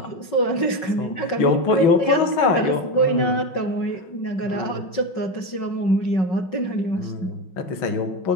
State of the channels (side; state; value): right; late; 5.4 ms